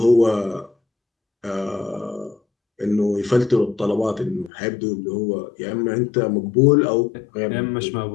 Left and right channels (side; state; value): right; drops out; at 4.5 s